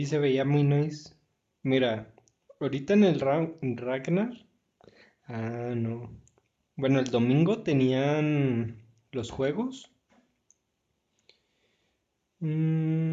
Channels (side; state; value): both; identical; correlation 1.00